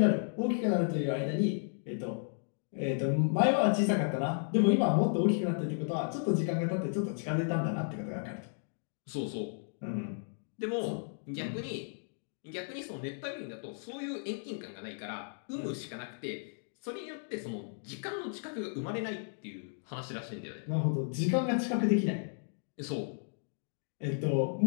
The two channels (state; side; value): silent; right; digital silence